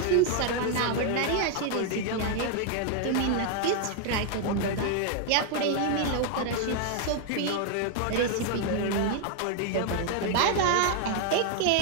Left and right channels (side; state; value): both; different; correlation 0.00